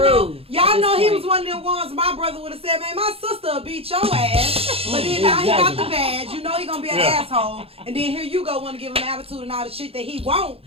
Y'all at know this he point. was one of them ones my brother would have said, man, my sister will beat your ass. But then now he got the badge. You know he gonna be an asshole. And then here you go want to give him attitude and all the shit that he won't.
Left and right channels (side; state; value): left; late; 0.28 ms